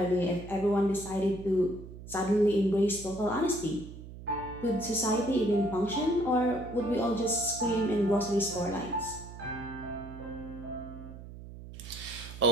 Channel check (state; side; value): noise; right; hum, 14 dB below the sound